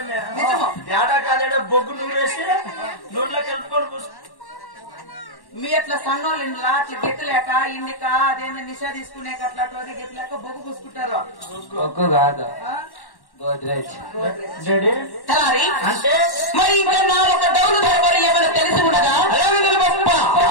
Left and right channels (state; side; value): late; right; 1.1 ms